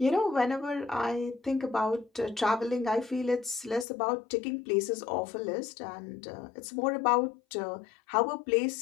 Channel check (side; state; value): right; drops out; at 3.9 s